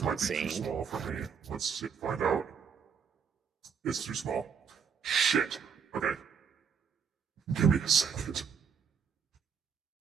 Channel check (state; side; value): quieter; left; 6.7 dB